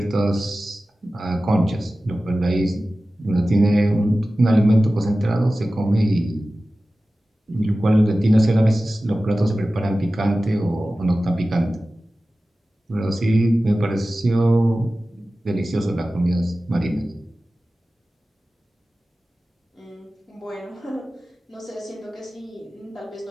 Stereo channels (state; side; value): normal; both; correlation 0.95